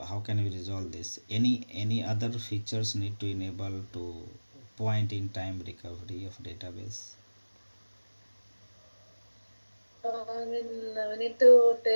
how can we resolve this? Any other features need to enable to point in time recovery of database? We need to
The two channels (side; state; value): both; inverted; correlation -1.00